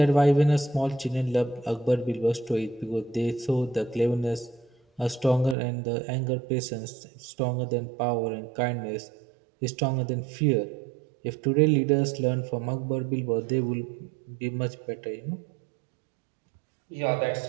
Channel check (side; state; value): left; drops out; at 5.6 s